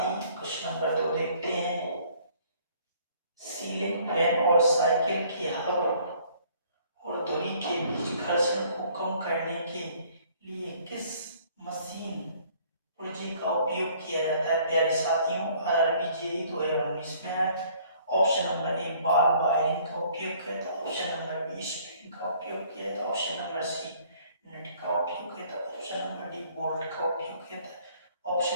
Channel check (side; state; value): both; inverted; correlation -0.58